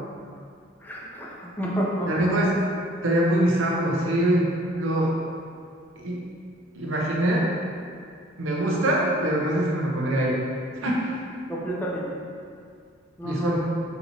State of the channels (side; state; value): both; normal; correlation 0.56